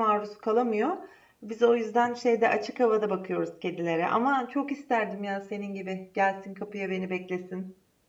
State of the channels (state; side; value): identical; both; correlation 1.00